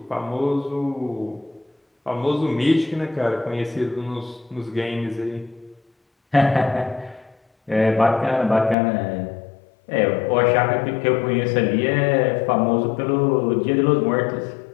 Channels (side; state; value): right; drops out; at 8.8 s